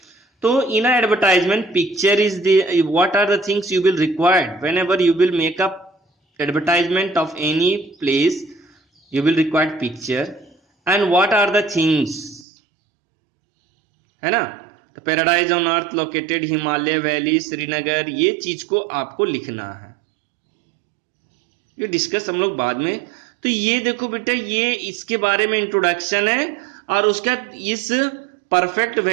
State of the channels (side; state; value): left; drops out; at 12.5 s